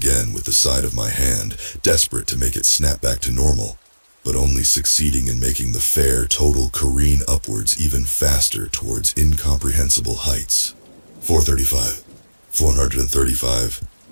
with the side of my hand, desperate to make it snap back to normal, but only succeeding in making the fare total careen upwards even faster towards incomprehensible heights. 435, 435,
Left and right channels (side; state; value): both; inverted; correlation -1.00